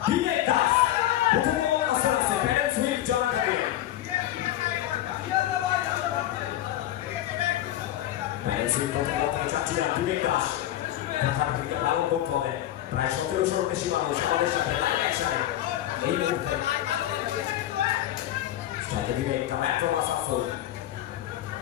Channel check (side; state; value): right; quieter; 13.1 dB